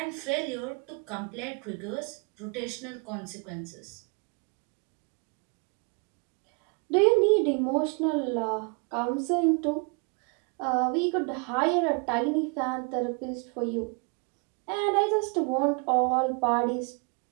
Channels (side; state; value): left; quieter; 34.8 dB